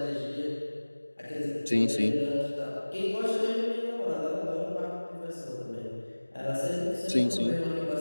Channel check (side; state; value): both; inverted; correlation -1.00